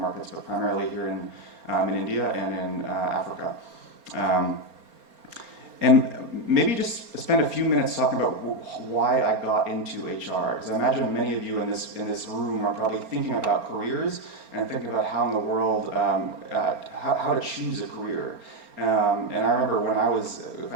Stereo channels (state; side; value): late; left; 4.3 ms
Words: but primarily here in India and in Africa. And maybe just spend a few minutes talking about why I got into HR, because I imagine many of you in this room are probably thinking about careers and thinking about how in the world, how to choose a career. And I remember if